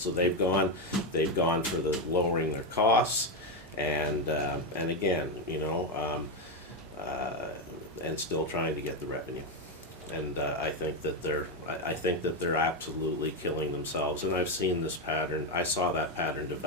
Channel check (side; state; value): both; normal; correlation 0.07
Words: they've gone for the lowering their costs. And again, you know, and still trying to get the revenue, and I think that they're absolutely killing themselves. And I've seen this pattern. I saw that pattern